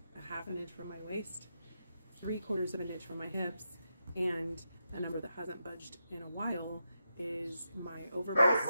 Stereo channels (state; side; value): inverted; both; correlation -0.86